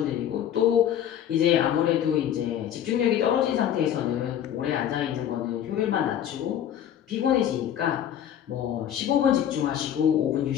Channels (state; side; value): quieter; right; 10.2 dB